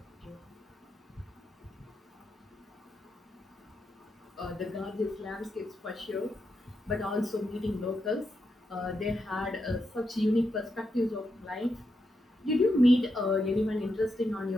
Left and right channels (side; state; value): both; normal; correlation 0.84